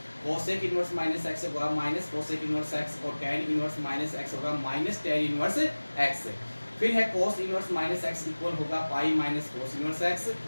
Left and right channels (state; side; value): inverted; both; correlation -1.00